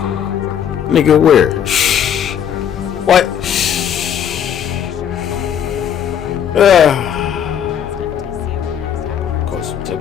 Nigga, where? What? Cause some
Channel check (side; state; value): right; quieter; 8.9 dB